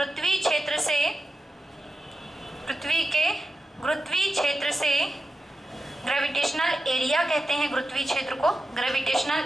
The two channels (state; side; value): normal; both; correlation 0.91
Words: क्षेत्र से, ग्रेविटेशनल एरिया कहते हैं गुरुत्वीय क्षेत्र को,